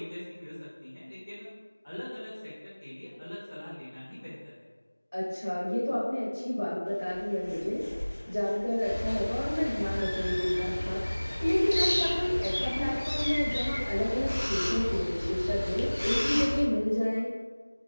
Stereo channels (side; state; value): both; inverted; correlation -1.00